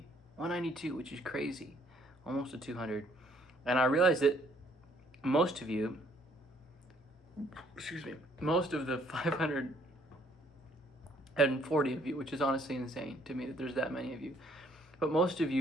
192, which is crazy, almost to 200. And I realized that most of you, most of the 540 of you, which is honestly insane to me that there's that many of you, but most of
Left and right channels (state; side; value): normal; both; correlation 0.64